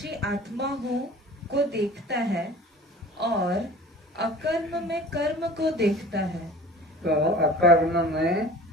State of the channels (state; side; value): normal; both; correlation 0.43